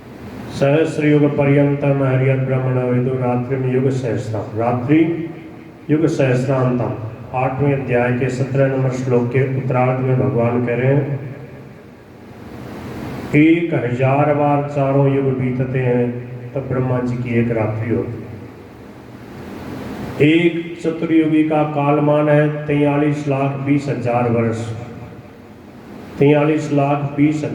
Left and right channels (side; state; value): both; identical; correlation 1.00